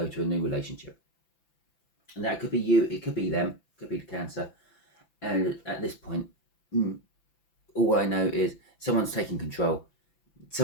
to a new relationship. And that could be you, it could be them, it could be the Cancer. And at this point, all I know is someone's taking control.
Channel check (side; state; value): right; late; 5.9 ms